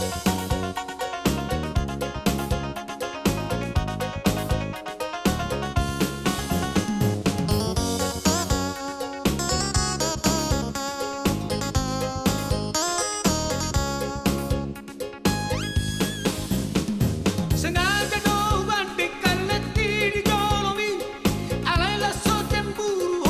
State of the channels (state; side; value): identical; both; correlation 1.00